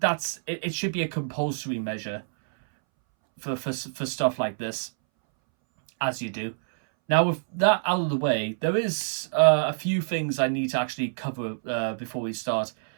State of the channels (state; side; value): silent; left; 61 dB below the other